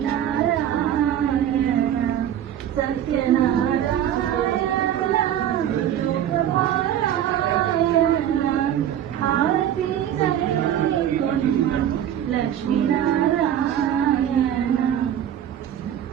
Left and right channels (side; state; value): left; quieter; 10.5 dB